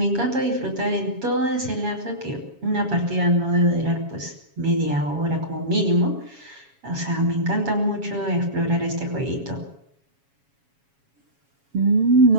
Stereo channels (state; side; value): late; left; 7.2 ms